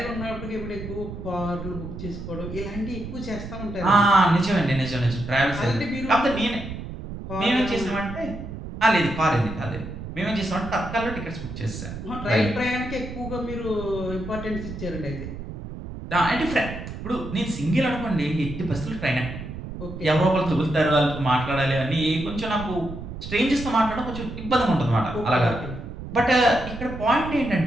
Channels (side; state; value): right; noise; rumble, 9 dB below the sound